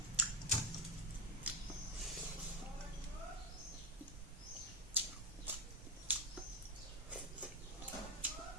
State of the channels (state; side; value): normal; both; correlation 0.04